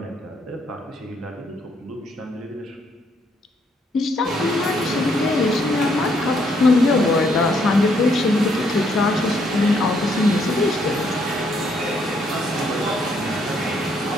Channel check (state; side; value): normal; both; correlation 0.71